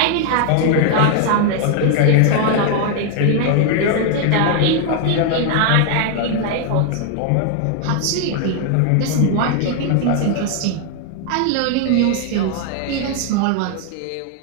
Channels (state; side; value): different; both; correlation 0.00